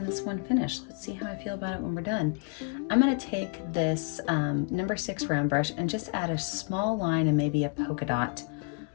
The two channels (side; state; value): right; quieter; 34.7 dB